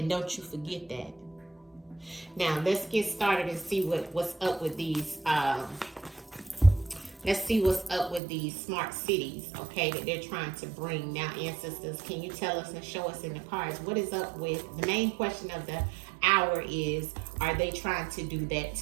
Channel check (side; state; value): left; drops out; at 8.2 s